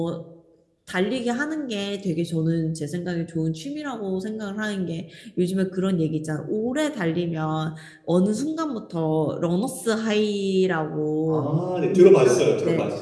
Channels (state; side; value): identical; both; correlation 1.00